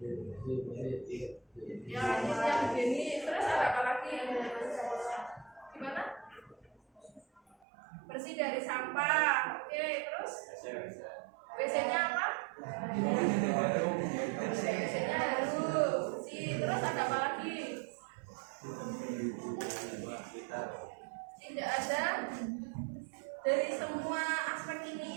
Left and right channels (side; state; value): left; drops out; at 7.6 s